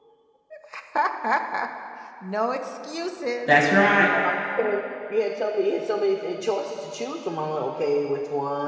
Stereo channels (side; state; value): both; identical; correlation 1.00